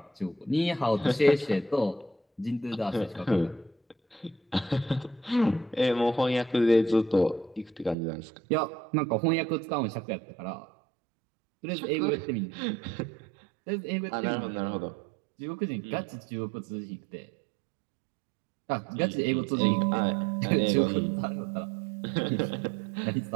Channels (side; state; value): left; drops out; at 8.0 s